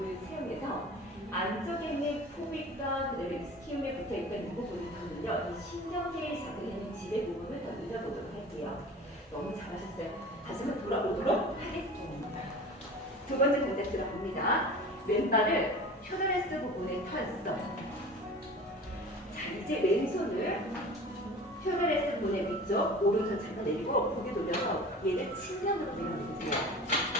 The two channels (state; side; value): normal; both; correlation 0.39